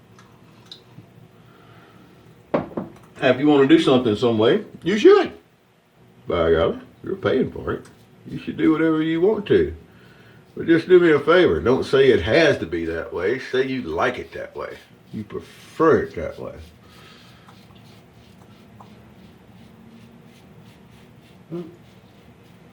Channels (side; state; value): both; identical; correlation 1.00